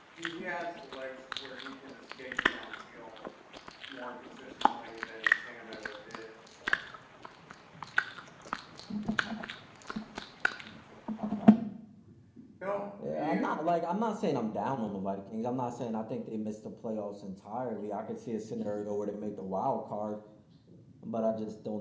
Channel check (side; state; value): both; identical; correlation 1.00